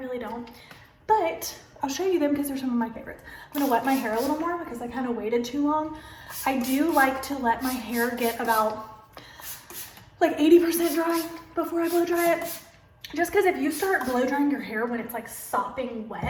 don't. But I'll show you them because they're some of my favorites. I'm gonna wet my hair a little more because I kind of waited too long. I do like to let my hair get about like 80% dry before I blow dry it. Just because if you start blow drying your hair when it's like sopping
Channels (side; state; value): both; identical; correlation 1.00